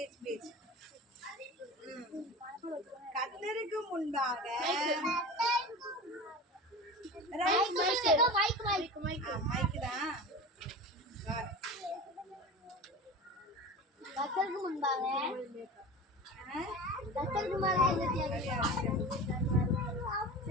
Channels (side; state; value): both; normal; correlation 0.32